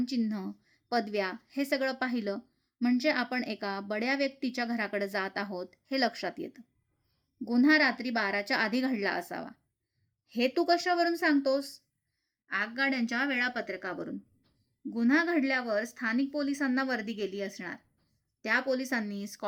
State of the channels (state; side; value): identical; both; correlation 1.00